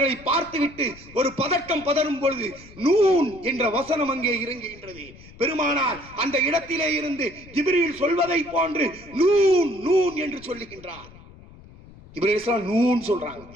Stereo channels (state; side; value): noise; left; rumble, 21 dB below the sound